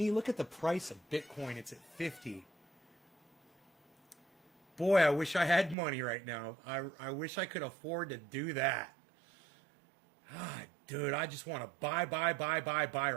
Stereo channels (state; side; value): drops out; left; at 5.8 s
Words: Look at the price of Bitcoin. It's at 50. Boy, I wish I had money right now. I wish I could afford to do that. Ah, dude, I just want to buy